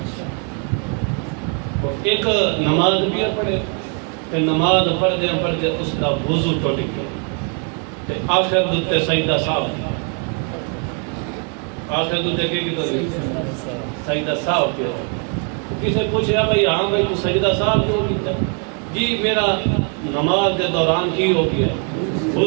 ایک نماز بھی پڑھے کہ نماز پڑھدے پڑھدے اس دا وضو ٹوٹ گیا تے آخر دتے سجدہ صاحب، آخر دتے کہ سجدہ صاحب کیا۔ کسے پوچھا بھائی ہاں بھائی تو سجدہ صاحب کیوں کیتا؟ جی میرا نماز دے دوران کی ہو گیا،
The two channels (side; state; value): left; quieter; 38.4 dB